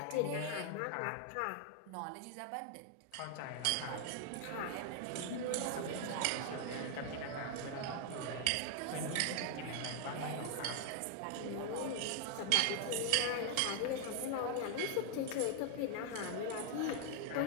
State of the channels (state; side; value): different; both; correlation 0.00